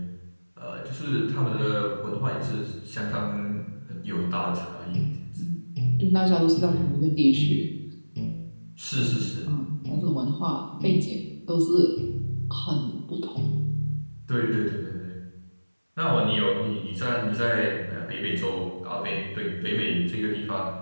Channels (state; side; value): inverted; both; correlation -1.00